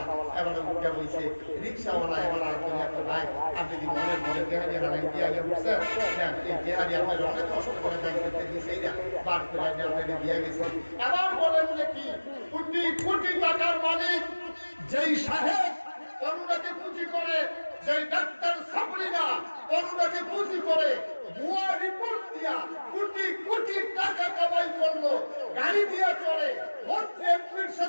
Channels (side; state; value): both; inverted; correlation -1.00